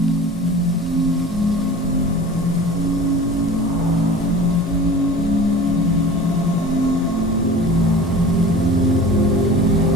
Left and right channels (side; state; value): both; normal; correlation 0.38